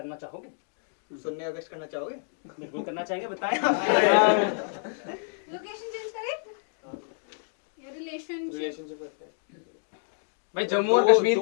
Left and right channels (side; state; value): right; silent; digital silence